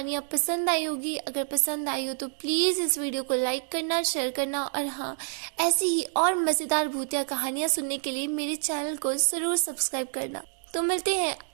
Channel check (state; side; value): silent; left; digital silence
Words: पसंद आई होगी। अगर पसंद आई हो तो प्लीज इस वीडियो को लाइक करना, शेयर करना और हाँ, ऐसी ही और मजेदार भूतिया कहानियाँ सुनने के लिए मेरे चैनल को जरूर सब्सक्राइब करना। तो मिलते हैं